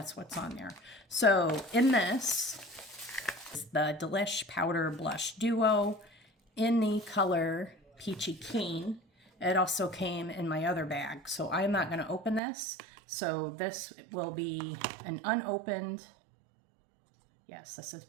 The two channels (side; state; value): left; drops out; at 12.4 s